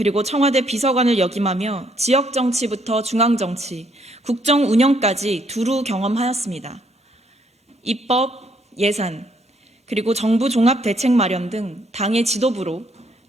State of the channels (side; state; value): both; normal; correlation 0.69